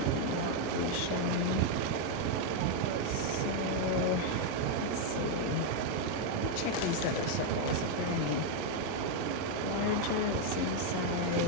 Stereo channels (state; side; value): different; both; correlation 0.01